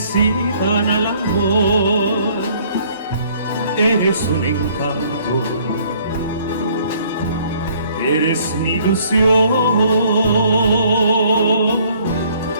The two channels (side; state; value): both; inverted; correlation -0.60